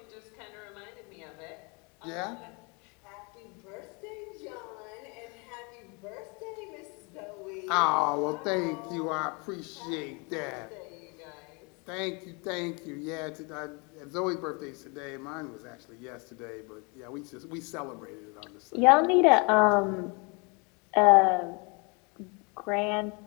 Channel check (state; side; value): quieter; right; 31.6 dB